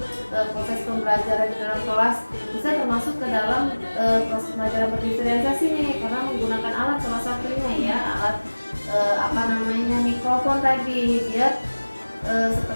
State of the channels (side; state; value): both; inverted; correlation -1.00